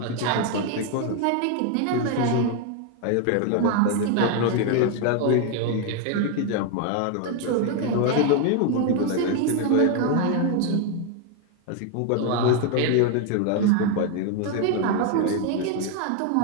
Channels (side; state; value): both; different; correlation 0.01